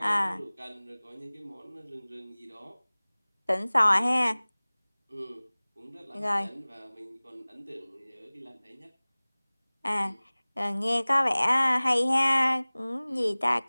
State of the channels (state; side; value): inverted; both; correlation -1.00